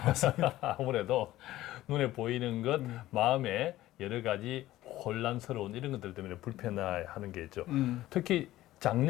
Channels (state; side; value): quieter; right; 15.5 dB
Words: 맞습니다. 아무래도 눈에 보이는 것, 마음에 여러 가지 혼란스러운 이런 것들 때문에 불편해하는 게 있죠. 특히